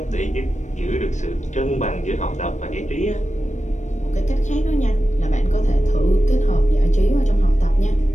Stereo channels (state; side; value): late; right; 0.35 ms